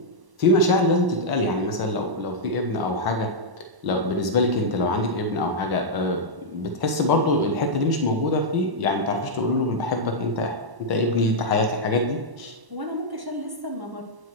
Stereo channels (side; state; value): left; late; 1.1 ms